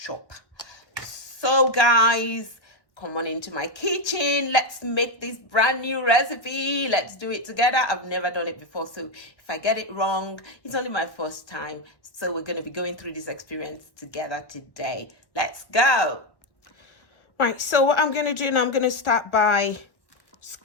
So guys, come on into my kitchen. Let's make this brand new recipe. Let's do it together. I've never done it before, so if I get it wrong, it's only my first time. So we're going to be going through this experience together today. Let's go. Right, so what I'm going to do now, I'm going to start by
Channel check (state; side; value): late; right; 1.1 ms